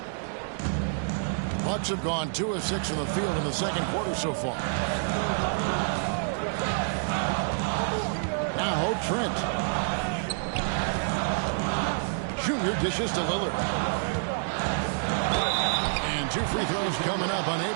Bucks have gone 2 of 6 from the field in the second quarter so far. Now Trent. Junior dishes to Lillard. And 2 free throws coming up.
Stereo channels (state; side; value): silent; left; digital silence